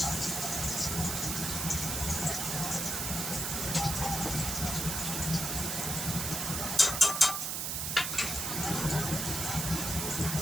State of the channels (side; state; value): right; noise; hiss, 1 dB below the sound